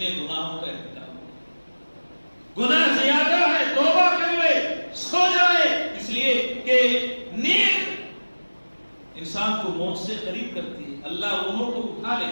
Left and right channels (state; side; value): inverted; both; correlation -1.00